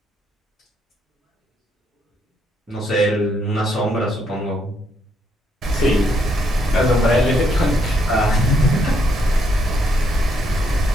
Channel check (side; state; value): both; normal; correlation 0.74